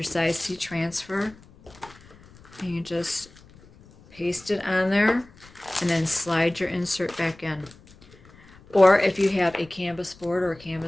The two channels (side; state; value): left; noise; rumble, 24 dB below the sound